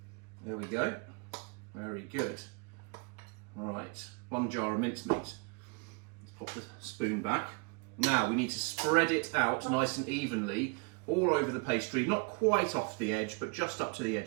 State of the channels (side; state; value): left; quieter; 33.9 dB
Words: There we go. Very good. Right, 1 jar of mincemeat. Let's pop the spoon back. Now we need to spread it out nice and evenly all over the pastry, not quite off the edge, but just up to the